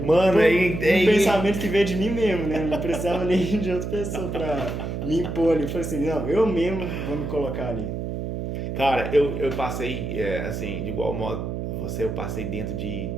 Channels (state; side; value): noise; right; hum, 4 dB below the sound